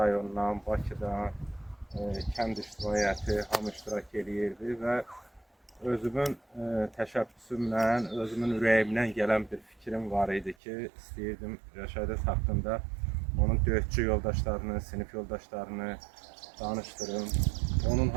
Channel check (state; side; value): drops out; left; at 10.6 s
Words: Bakıdan, kənd ictimaiyyəti hamı iştirak edirdi və özümün təşəbbüsümlə, özümün ürəyimdən gələn bir fikrim var idi ki, istəyirdim Rəşadət haqqında onun döyüşçü yoldaşlarını, sinif yoldaşlarını danışdırım. Onun